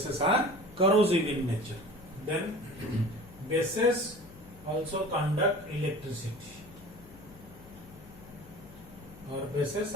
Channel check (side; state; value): left; noise; hum, 21 dB below the sound